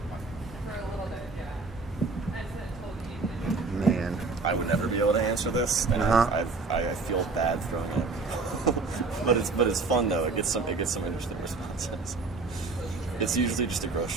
Man. I would never be able to answer this, and I feel bad throwing it. but it's fun though. It gets some interesting responses. It's usually just a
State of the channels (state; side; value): quieter; left; 4.0 dB